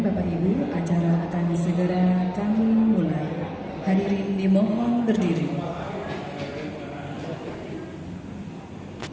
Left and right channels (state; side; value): identical; both; correlation 1.00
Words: Ibu, acara akan segera kami mulai. Hadirin dimohon berdiri.